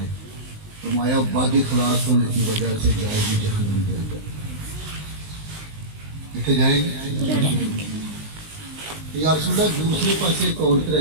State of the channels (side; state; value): left; late; 19 ms